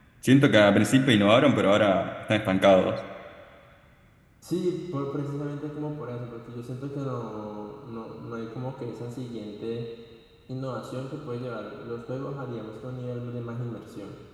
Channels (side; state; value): both; identical; correlation 1.00